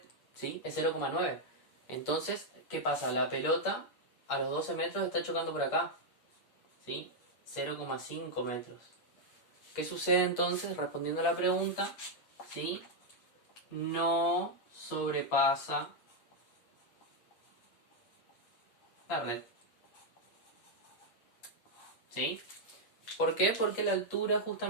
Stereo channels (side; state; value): right; late; 8.5 ms